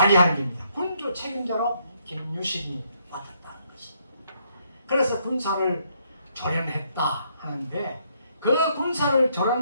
겁니다. 군주 책임자로 김유신이 맡았다는 것입니다. 그래서 군사를 조련했다 하는데 그 군사를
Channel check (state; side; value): inverted; both; correlation -0.72